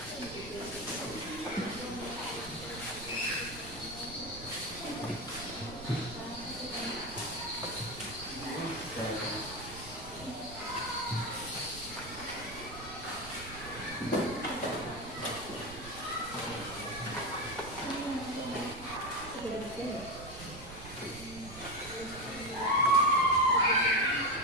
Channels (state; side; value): noise; right; rumble, 14 dB below the sound